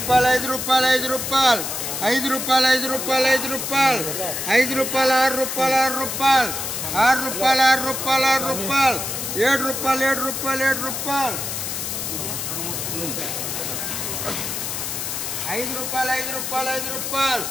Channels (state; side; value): noise; left; hiss, 4 dB below the sound